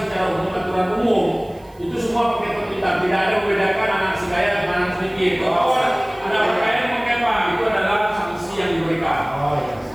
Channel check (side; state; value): right; noise; hiss, 30 dB below the sound